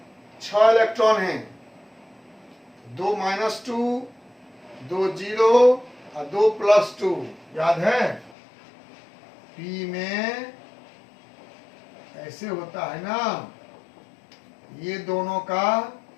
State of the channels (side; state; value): right; drops out; at 8.3 s